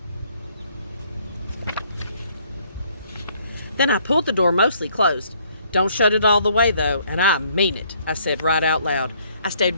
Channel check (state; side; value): inverted; both; correlation -0.65